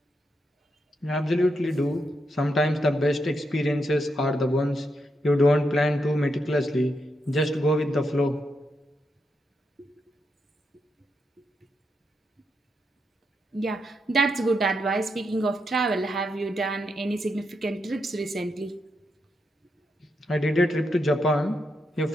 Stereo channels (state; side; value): normal; both; correlation 0.82